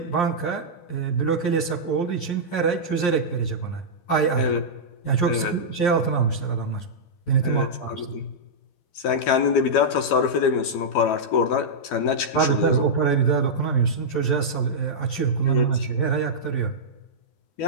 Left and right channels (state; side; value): late; right; 12 ms